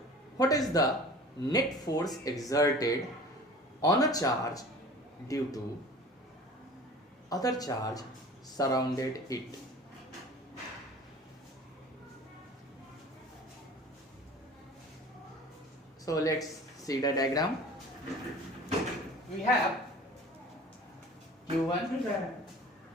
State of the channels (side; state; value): both; normal; correlation 0.42